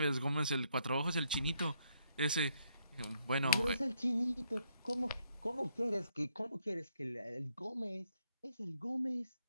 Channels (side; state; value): both; inverted; correlation -0.73